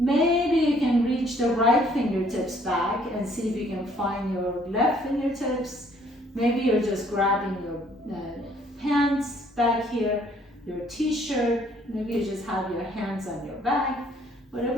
you can reach the right fingertips back and see if you can find your left fingertips. Maybe you're just grabbing your hands back here, your t-shirt. Maybe you just have your hands on your back.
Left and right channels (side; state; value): both; normal; correlation 0.62